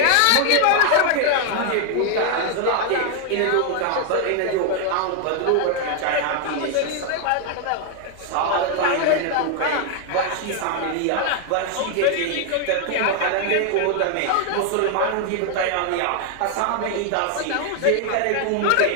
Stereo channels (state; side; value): different; both; correlation 0.00